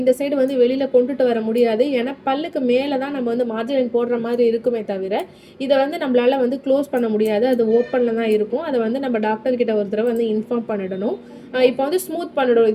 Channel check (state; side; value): identical; both; correlation 1.00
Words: இந்த சைடு வந்து வெளியில் கொண்டுட்டு வர முடியாது. ஏன்னா பல்லுக்கு மேலே தான் நம்ம வந்து மார்ஜின் லைன் போடுற மாதிரி இருக்குமே தவிர இதை வந்து நம்மளால் வந்து க்ளோஸ் பண்ண முடியாது. அது ஓப்பனில் தான் இருக்கும். அதை வந்து நம்ம டாக்டர்கிட்ட ஒரு தடவை வந்து இன்ஃபார்ம் பண்ணிடணும். இப்போ வந்து ஸ்மூத் பண்ணிடும்.